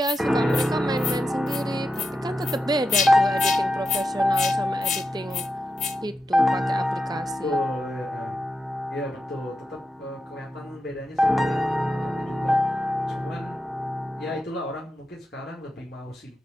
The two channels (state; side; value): normal; both; correlation 0.87